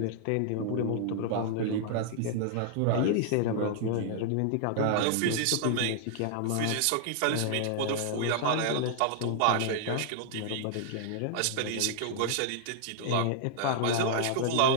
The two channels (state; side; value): different; both; correlation -0.01